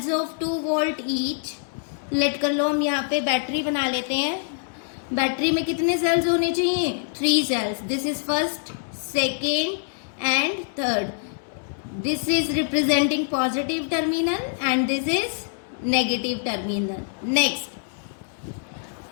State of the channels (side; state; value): right; silent; digital silence